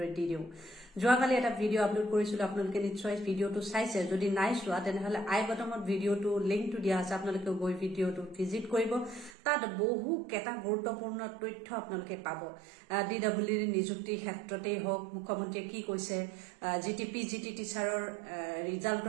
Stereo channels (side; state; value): left; drops out; at 9.3 s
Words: দি দিও যোৱাকালি এটা ভিডিও আপলোড কৰিছিল আপোনালোকে নিশ্চয় ভিডিওটো চাইছে যদি নাই চোৱা তেনেহলে আই বটমত ভিডিওটো লিংকটো দিয়া আছে আপোনালোকে গৈ ভিডিওটো ভিজিট কৰিব তাত বহু কেটা গুৰুত্বপূৰ্ণ তথ্য আপোনালোকে পাব ডিডব্লিউৰ নিযুক্তি ক্ষেত্ৰতে হওক মুখ্যমন্ত্ৰীয়ে কি কৈছে জিটিপি জিটি টিচাৰৰ